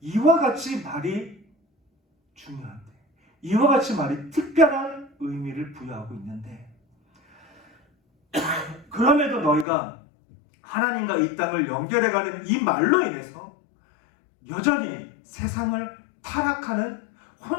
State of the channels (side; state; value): right; drops out; at 9.7 s